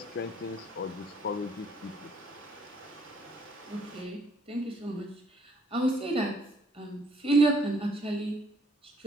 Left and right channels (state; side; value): normal; both; correlation 0.65